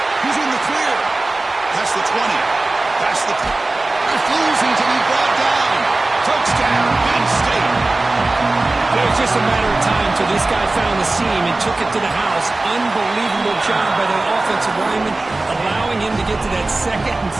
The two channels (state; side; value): quieter; left; 3.0 dB